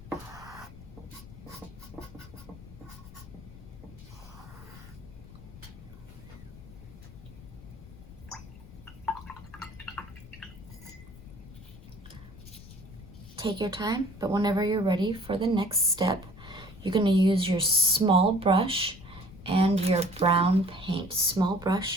Take your time, but whenever you're ready for the next step, you're going to use your small brush and your brown paint. Small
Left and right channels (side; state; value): left; noise; rumble, 17 dB below the sound